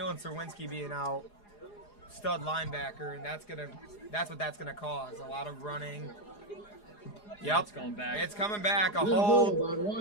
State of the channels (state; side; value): late; right; 4.8 ms